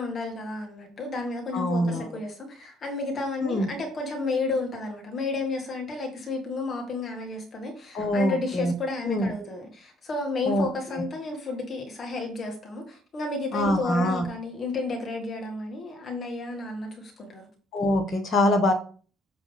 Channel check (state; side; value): normal; both; correlation 0.65